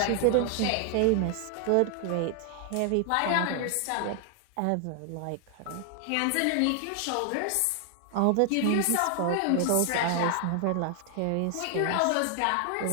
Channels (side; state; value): both; different; correlation 0.00